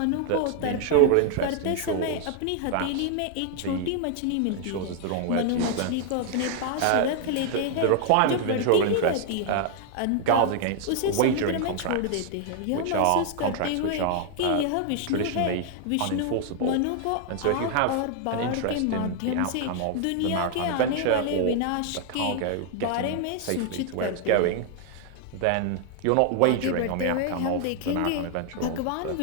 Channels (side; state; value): both; different; correlation 0.00